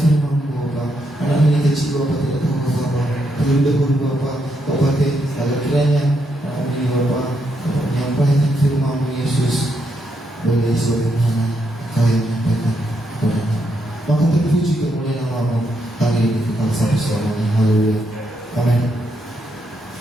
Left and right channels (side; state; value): both; normal; correlation 0.79